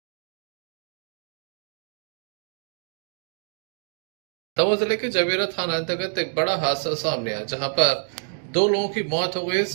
दमोह जिले के जवेरा थाना अंतर्गत एक बड़ा हादसा सामने आया, जहां पर 2 लोगों की मौत हो गई।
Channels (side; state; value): left; silent; 56 dB below the other